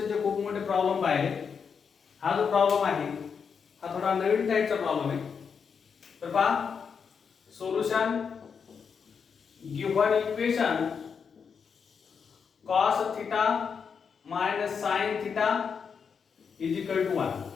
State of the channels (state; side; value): quieter; right; 6.3 dB